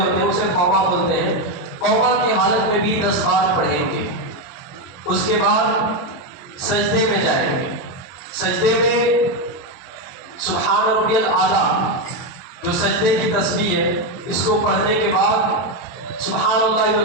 ہیں اسے قوما بولتے ہیں۔ قوما کی حالت میں بھی 10 بار پڑھیں گے۔ اس کے بعد سجدے میں جائیں گے۔ سجدے میں سبحان ربی الاعلیٰ جو سجدے کی تسبیح ہے اس کو پڑھنے کے بعد سبحان اللہ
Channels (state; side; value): late; right; 23 ms